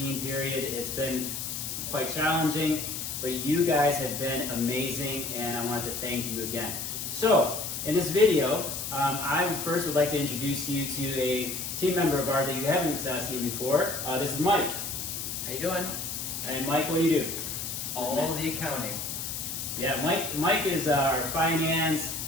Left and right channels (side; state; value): left; noise; hiss, 5 dB below the sound